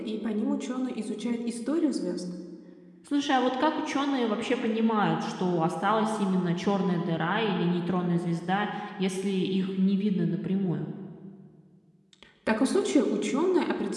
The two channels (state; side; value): identical; both; correlation 1.00